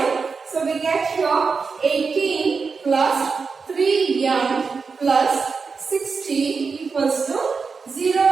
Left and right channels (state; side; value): quieter; left; 5.0 dB